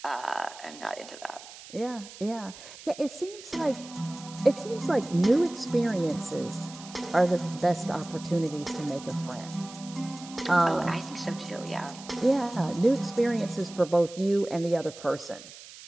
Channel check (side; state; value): right; noise; hiss, 17 dB below the sound